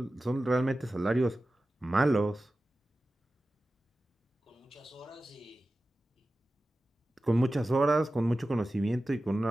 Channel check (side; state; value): both; normal; correlation 0.95